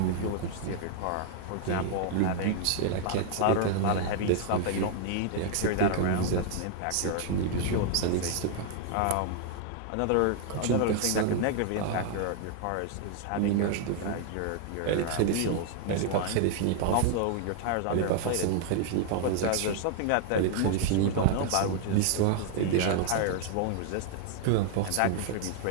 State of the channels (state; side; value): different; both; correlation 0.00